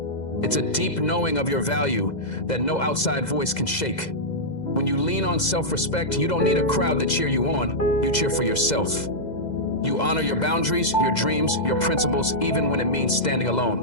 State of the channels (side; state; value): right; late; 2.0 ms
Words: It's a deep knowing of your value that no outside voice can shake. When you lean on self-respect, you don't need a crowd to cheer you on. You cheer for yourself. You honor your boundaries, your dreams, your principles, even when it means standing